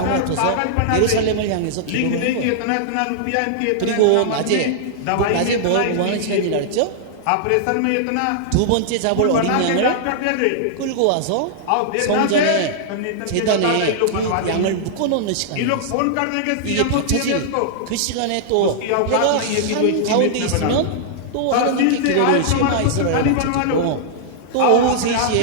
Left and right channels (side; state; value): both; different; correlation -0.01